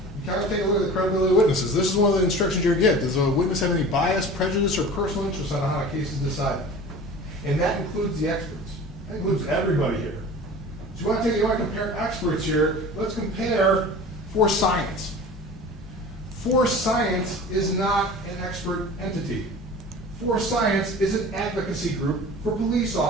got to take a look at the credibility of witnesses. This is one of the instructions you get. Does a witness have any bias, prejudice, or personal interest on how a case is decided? And that includes the experts. That includes everybody here. So you want to compare experts here. Let's compare for science. For science is not an expert entity. For science is an advocacy group for police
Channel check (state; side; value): normal; both; correlation 0.39